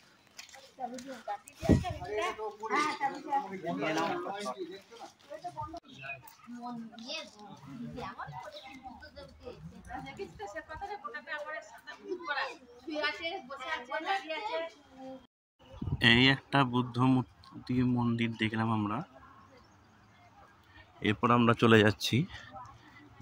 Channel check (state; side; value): identical; both; correlation 1.00